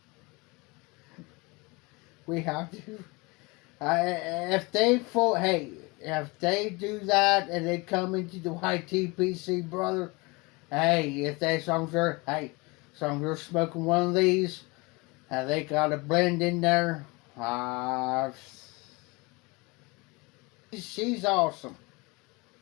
We have to. If they do that and they come into the YTPC, brother, hey, if they songs are, you're smoking one of these, and they got a blend in there, she's awesome.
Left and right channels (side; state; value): right; quieter; 25.9 dB